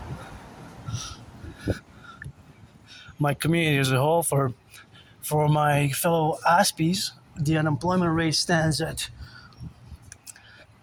My community as a whole, for my fellow Aspies, the unemployment rate stands at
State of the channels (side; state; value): both; identical; correlation 1.00